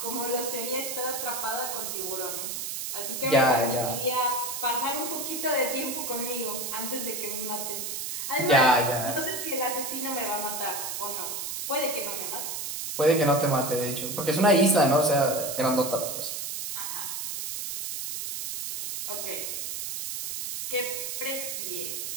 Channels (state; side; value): noise; right; hiss, 4 dB below the sound